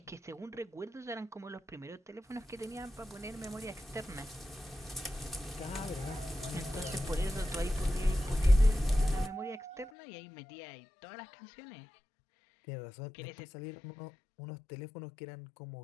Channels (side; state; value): right; drops out; at 9.9 s